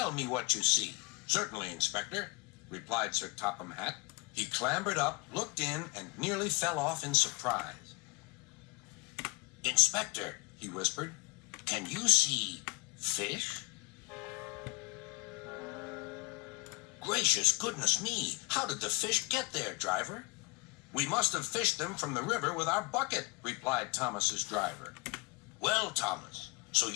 me what you see." "Certainly, Inspector," replied Sir Topham Hatt. He clambered up, looked in, and nearly fell off in surprise. "Inspector," he whispered, "can you see fish?" "Gracious goodness me! How did the fish get there, driver?" "We must have fished them from the river with our bucket," replied Thomas's driver. "Well, Thomas, so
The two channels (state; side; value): quieter; right; 29.3 dB